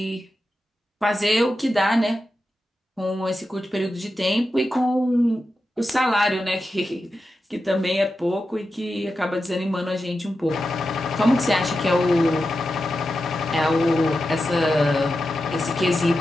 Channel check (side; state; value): both; normal; correlation 0.90